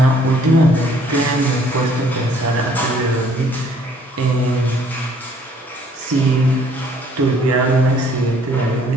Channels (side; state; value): both; normal; correlation 0.60